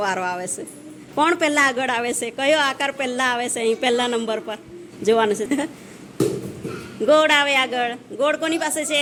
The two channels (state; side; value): identical; both; correlation 1.00